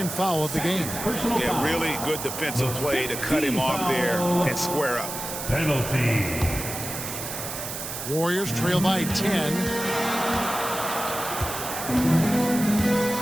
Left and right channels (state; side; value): noise; right; hiss, 7 dB below the sound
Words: foul of the game. Yeah, really good defensive play to cut him off there and square up. Penalty. Warriors trail by 10.